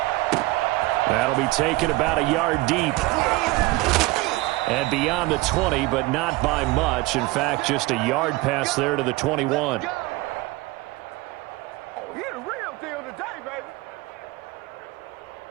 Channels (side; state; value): left; quieter; 20.5 dB